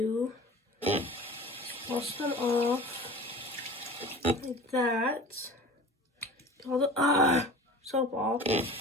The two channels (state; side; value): normal; both; correlation 0.39